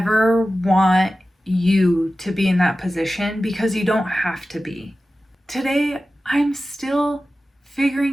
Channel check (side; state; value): both; normal; correlation 0.95